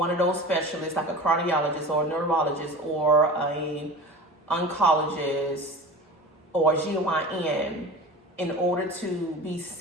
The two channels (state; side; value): normal; both; correlation 0.34